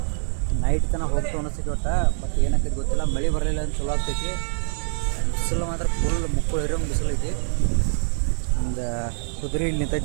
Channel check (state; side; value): silent; left; 62 dB below the other